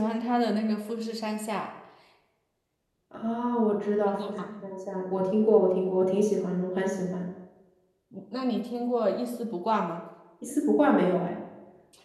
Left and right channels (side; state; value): both; identical; correlation 1.00